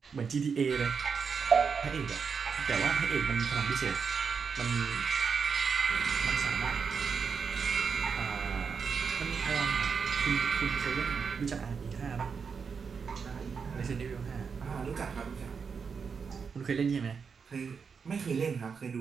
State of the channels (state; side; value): quieter; left; 5.9 dB